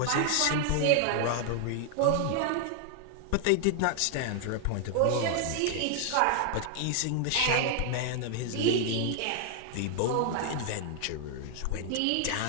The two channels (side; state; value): both; different; correlation 0.00